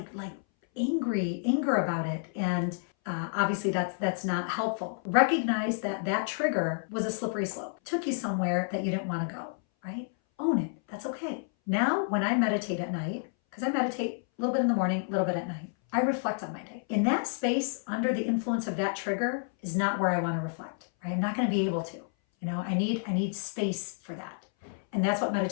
anger about it, and obviously that's not helpful. Recognize that trigger was a slippery slope. Took you somewhere that you didn't want to go, right? Own it. That's okay. Now, when I meditate at night, because I meditate a little bit in the morning, a little bit at night, I reflect on my day. In that space, under the influence of that trigger, is not where I want to reflect. Right? I'm not going to be able to. You know, I need space for that. And that's what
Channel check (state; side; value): silent; right; 58 dB below the other